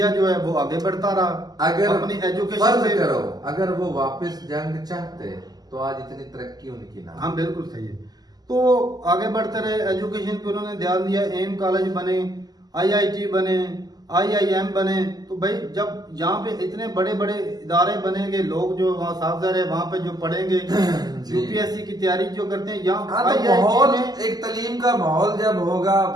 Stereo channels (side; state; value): left; late; 0.19 ms